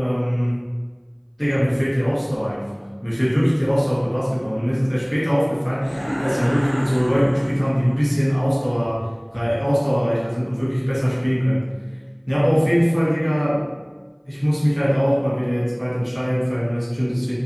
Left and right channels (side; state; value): both; identical; correlation 1.00